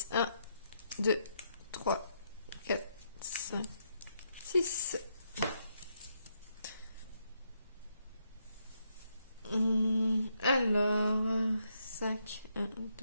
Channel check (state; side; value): inverted; both; correlation -0.78